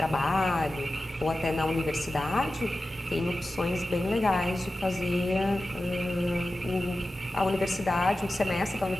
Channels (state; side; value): normal; both; correlation 0.94